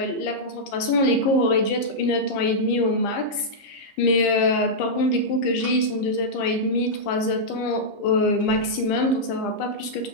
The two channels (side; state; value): right; late; 15 ms